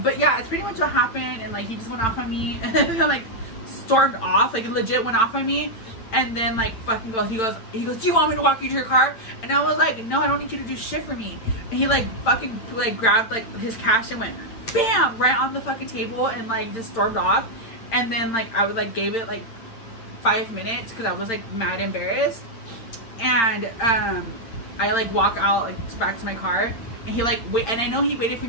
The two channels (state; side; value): late; right; 8.8 ms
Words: But yeah, it's pretty much what happened. And like, he just went off on me and then like stormed off, like legit went off on me. And then like fucking he goes, do you want me to walk you to your car? And I was like, no, I don't need you to do shit for me. And he like fucking like grabbed like his cash and went bam right on the fucking table and like just stormed off. And then like I would like gave it like 5 minutes because I was like mad embarrassed. And I like walk out like back to my car. And he like wait, and I know he waited for